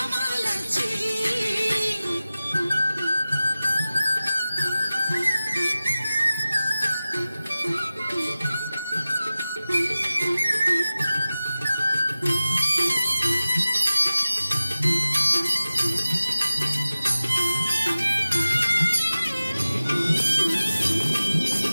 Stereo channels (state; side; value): inverted; both; correlation -0.96